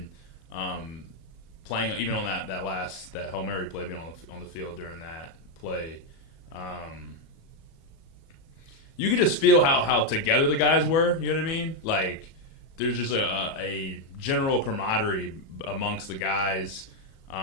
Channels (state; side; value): late; right; 37 ms